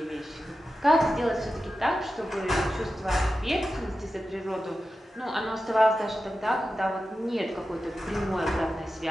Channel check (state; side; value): normal; both; correlation 0.92